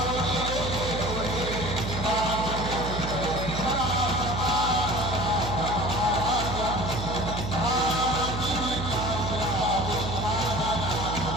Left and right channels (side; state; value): right; noise; hum, 4 dB below the sound